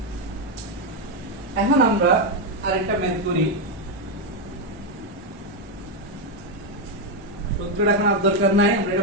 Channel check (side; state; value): both; normal; correlation 0.04